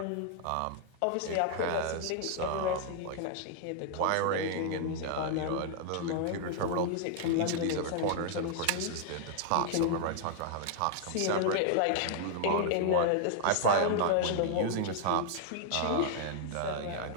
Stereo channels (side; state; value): both; different; correlation 0.00